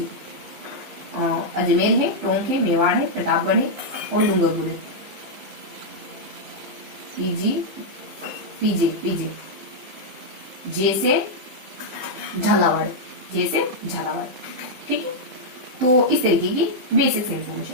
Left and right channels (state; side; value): late; left; 15 ms